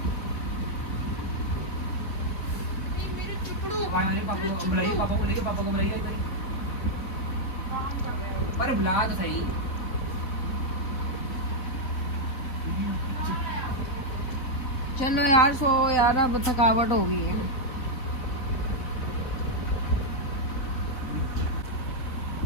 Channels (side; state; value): right; late; 4.0 ms